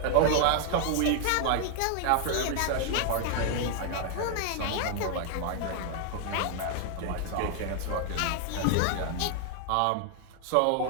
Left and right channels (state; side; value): different; both; correlation 0.00